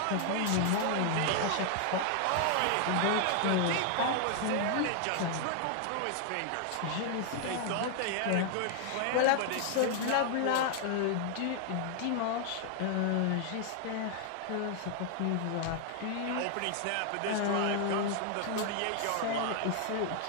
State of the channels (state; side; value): different; both; correlation 0.00